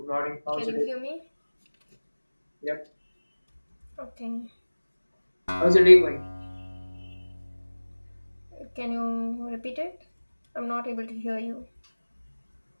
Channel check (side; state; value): both; inverted; correlation -1.00